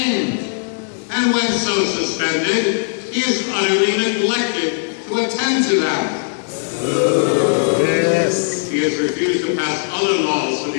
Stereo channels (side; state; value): right; silent; 67 dB below the other